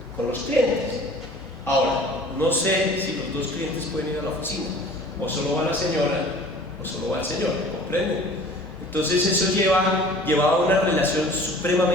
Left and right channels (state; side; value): normal; both; correlation 0.46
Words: con los clientes. Ahora, no sé si los 2 clientes pueden ir a la oficina, o solo va la señora, o solo va el señor, ¿comprenden? Entonces eso llevaba a una relación